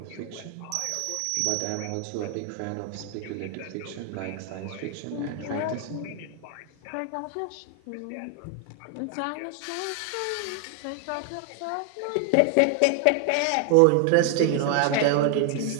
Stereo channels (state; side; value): different; both; correlation 0.00